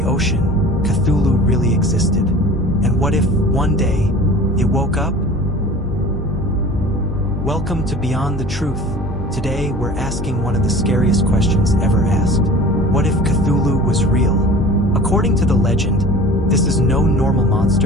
ocean, Cthulhu really existed? And what if, one day, it woke up? Welcome to Beyond the Truth. Today, we're asking one of the scariest questions ever asked. What if Cthulhu was real? According to the legend, this is no normal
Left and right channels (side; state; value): both; normal; correlation 0.41